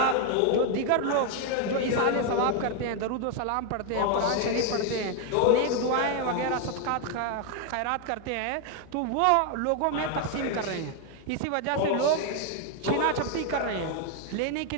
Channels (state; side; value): different; both; correlation 0.01